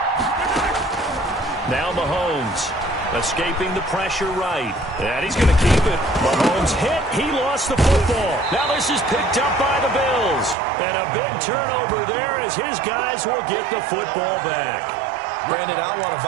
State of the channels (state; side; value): drops out; left; at 10.6 s